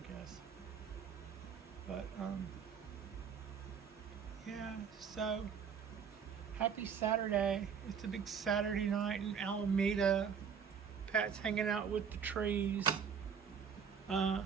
But yeah, so happy Saturday. It's a big Saturday night in Alameda. Pat's hanging out with the trees.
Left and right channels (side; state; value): left; quieter; 6.9 dB